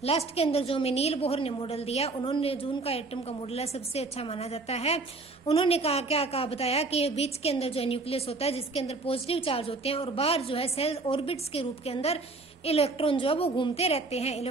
लास्ट के अंदर जो हमें नील बोहर ने मॉडल दिया, उन्होंने जो उनका एटम का मॉडल है सबसे अच्छा माना जाता है। उन्होंने कहा बताया कि बीच के अंदर जो है न्यूक्लियस होता है जिसके अंदर पॉजिटिव चार्ज होते हैं और बाहर जो है सेल ऑर्बिट्स के रूप के अंदर इलेक्ट्रॉन जो है वो घूमते रहते हैं।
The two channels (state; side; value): quieter; left; 3.5 dB